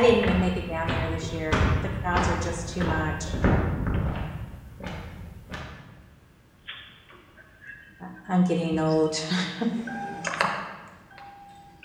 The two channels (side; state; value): both; identical; correlation 1.00